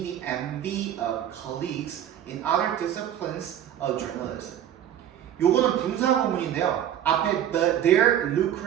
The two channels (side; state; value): left; quieter; 10.5 dB